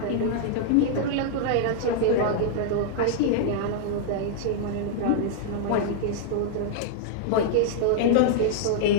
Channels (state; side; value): different; both; correlation -0.01